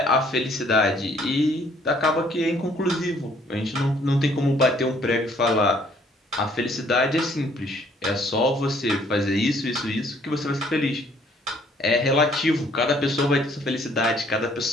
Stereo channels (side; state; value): both; normal; correlation 0.62